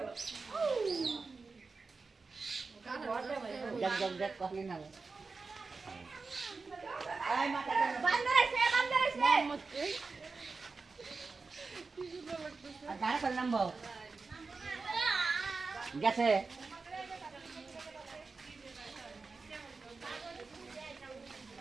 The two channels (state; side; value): quieter; left; 4.2 dB